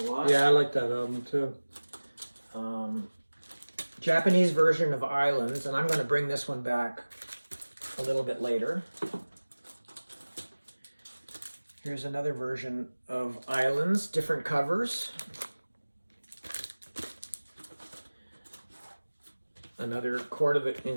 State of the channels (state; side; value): inverted; both; correlation -1.00